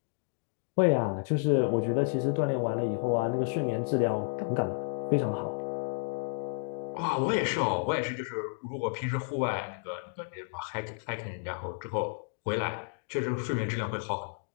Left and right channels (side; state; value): right; silent; digital silence